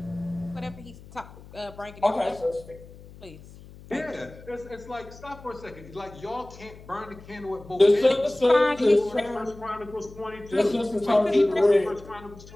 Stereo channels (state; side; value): noise; left; hum, 19 dB below the sound